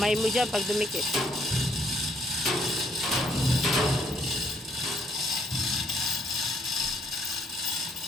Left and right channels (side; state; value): both; normal; correlation 0.68